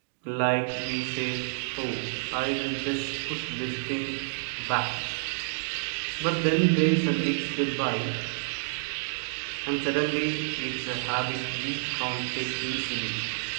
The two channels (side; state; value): left; silent; digital silence